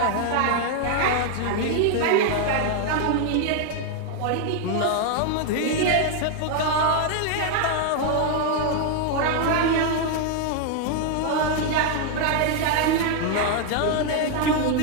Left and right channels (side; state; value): both; different; correlation 0.00